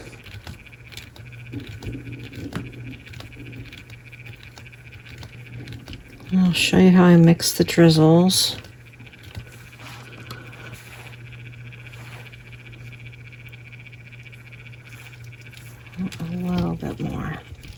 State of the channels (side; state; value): both; identical; correlation 1.00